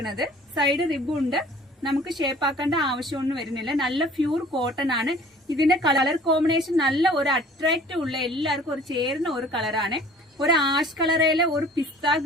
സൈഡ് റിബും ഉണ്ട്. നമുക്ക് ഷേപ്പ് ആക്കേണ്ട ആവശ്യമൊന്നും വരുന്നില്ല. നല്ല പ്യൂർ കോട്ടൺ ആണ്. ഇതിന്റെ കളർ കോമ്പിനേഷൻ നല്ല ഒരു അട്രാക്റ്റീവ് ഉള്ള, എല്ലാവർക്കും ഒരു ചേരുന്ന ഒരു കളറാണ്. ഒരു ആഷ് കളറിലെ ഒരു പിസ്ത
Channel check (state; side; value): normal; both; correlation 0.50